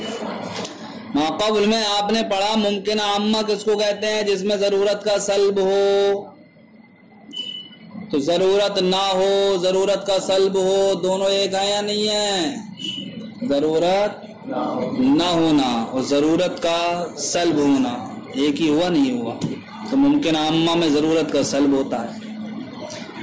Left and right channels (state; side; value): identical; both; correlation 1.00